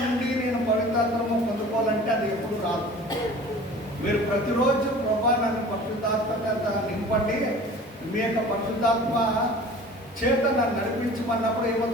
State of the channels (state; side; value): normal; both; correlation 0.43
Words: ఉండి నేను పవిత్రాత్మను పొందుకోవాలంటే అది ఎప్పుడు రాదు. మీరు ప్రతిరోజు ప్రభా నన్ను పరిశుద్ధాత్మ నింపండి, మీ యొక్క పరిశుద్ధాత్మ చేత నన్ను నడిపించమన్నప్పుడు